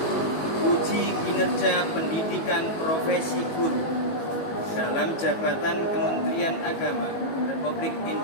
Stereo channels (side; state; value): right; late; 18 ms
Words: uji kinerja pendidikan profesi guru dalam jabatan Kementerian Agama Republik